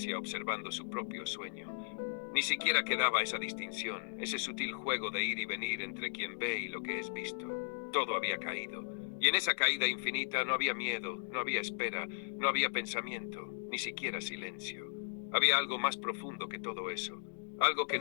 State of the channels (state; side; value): silent; right; digital silence